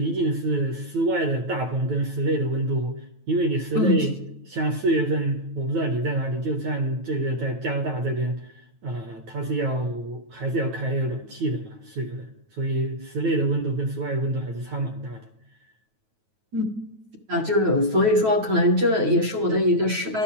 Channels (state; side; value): late; left; 9.2 ms